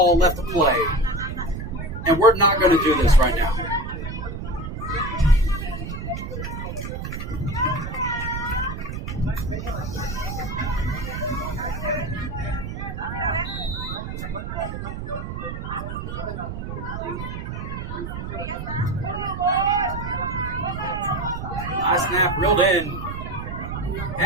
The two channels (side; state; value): right; noise; rumble, 6 dB below the sound